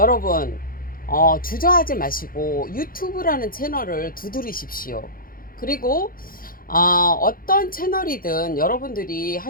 주저하지 마시고 유튜브라는 채널을 두드리십시오. 그리고 어떤 채널이든 여러분들이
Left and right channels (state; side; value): late; right; 0.42 ms